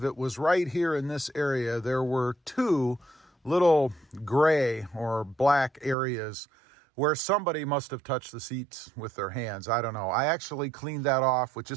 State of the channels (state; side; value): drops out; left; at 6.0 s